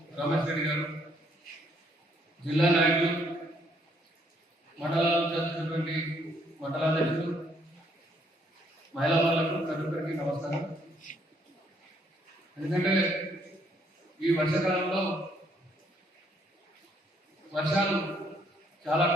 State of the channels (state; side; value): normal; both; correlation 0.69